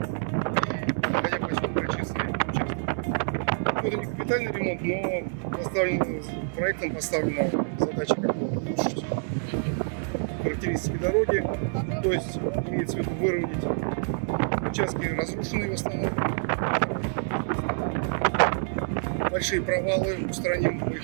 и находя поселка Честный участок. Это не капитальный ремонт, но проектом поставлена задача как бы улучшить характеристики дороги, то есть имеется в виду выровнять участки разрушенные в основном, большие провалы устраним, мы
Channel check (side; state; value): left; silent; 60 dB below the other